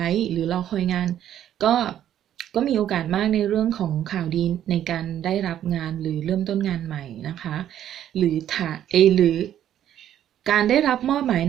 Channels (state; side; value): quieter; left; 11.0 dB